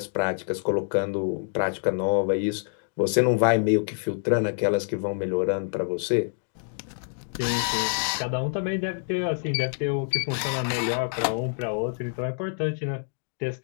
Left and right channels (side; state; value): right; silent; digital silence